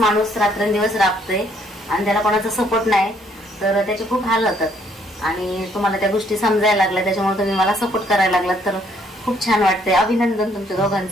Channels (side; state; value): both; normal; correlation 0.66